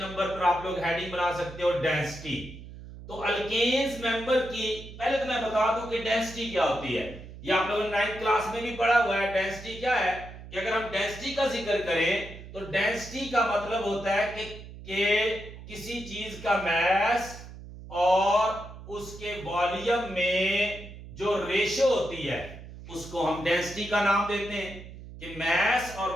पर, आप लोग हेडिंग बना सकते हो डेंसिटी। तो अल्केन्स मेंबर की पहले तो मैं बता दूं कि डेंसिटी क्या होती है, ये आप लोगों ने 9th क्लास में भी पढ़ा हुआ है। डेंसिटी क्या है कि अगर हम डेंसिटी का जिक्र करें तो डेंसिटी का मतलब होता है कि किसी चीज का मास और उसके वॉल्यूम में जो रेशो होती है उसको हम डेंसिटी का नाम देते हैं, कि मास और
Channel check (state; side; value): noise; right; hum, 14 dB below the sound